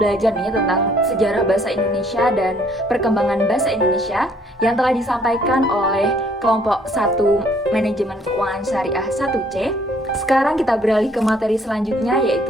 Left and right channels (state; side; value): normal; both; correlation 0.62